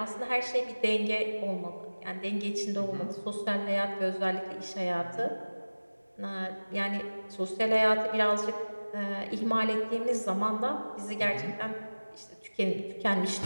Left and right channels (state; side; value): inverted; both; correlation -1.00